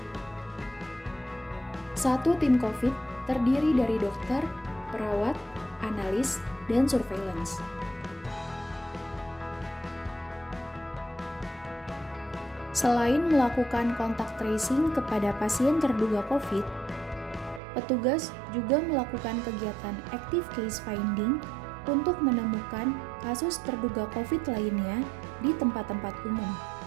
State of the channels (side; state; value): left; drops out; at 17.6 s